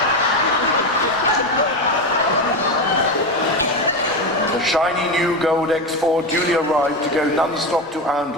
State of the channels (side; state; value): both; normal; correlation 0.16